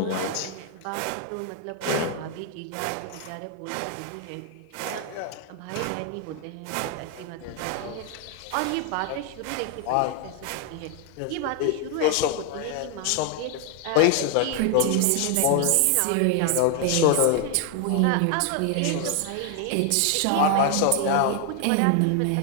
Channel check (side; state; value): both; different; correlation 0.01